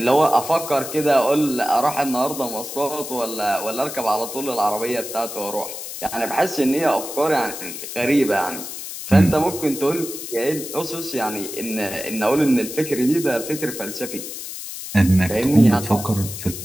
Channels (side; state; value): left; noise; hiss, 9 dB below the sound